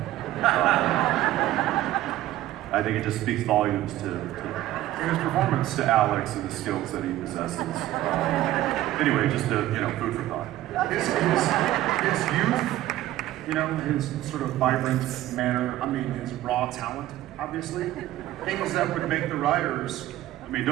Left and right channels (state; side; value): quieter; left; 14.8 dB